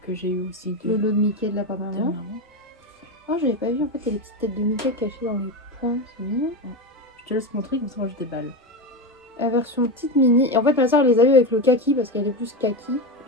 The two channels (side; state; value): both; normal; correlation 0.16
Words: que j'ai eu aussi Le lot de Mickey de la part de maman. Oh, j'avais pas vu en fait, il y a les petites têtes de Mickey cachées dans les points, c'est mignon. Je te laisse montrer comme ça, moi je déballe. La version petite mini. Et en fait, ma soeur les a eu avec le kaki parce qu'elle est plus kaki.